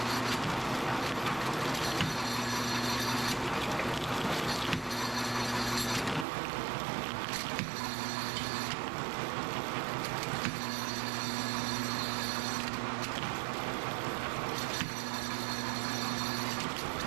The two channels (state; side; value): drops out; left; at 6.2 s